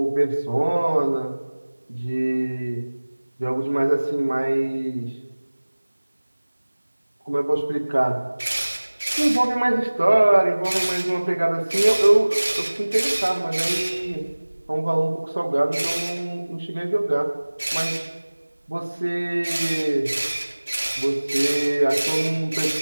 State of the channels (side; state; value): both; inverted; correlation -1.00